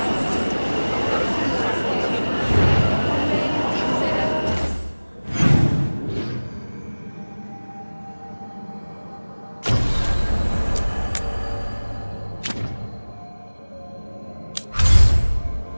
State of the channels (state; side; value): inverted; both; correlation -1.00